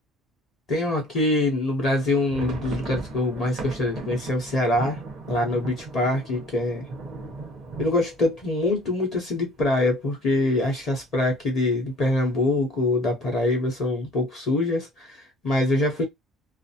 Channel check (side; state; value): both; normal; correlation 0.51